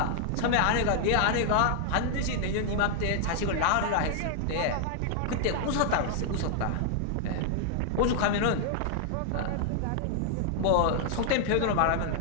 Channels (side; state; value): both; different; correlation 0.00